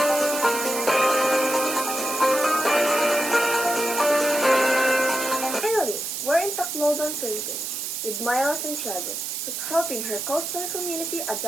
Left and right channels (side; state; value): right; noise; hiss, 4 dB below the sound